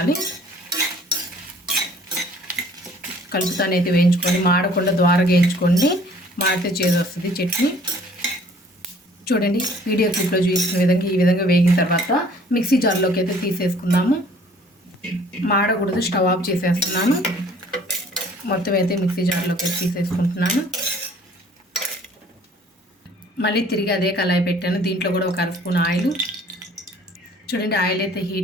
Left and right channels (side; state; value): both; normal; correlation 0.55